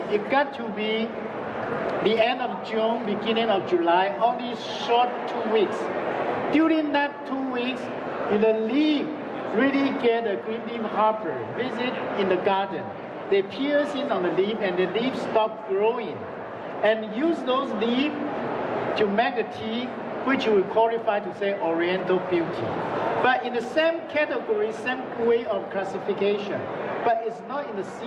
it got to be the end of June, beginning of July, only short 2 weeks. During that 2 weeks, the leaf really get a green leaf hopper visit in the garden. They pierce in on the leaf and the leaves stop growing. And use those leaves to make the tea, which we qualify to say Oriental Beauty. But in the same category, same way of classification, but it's not in the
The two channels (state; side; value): identical; both; correlation 1.00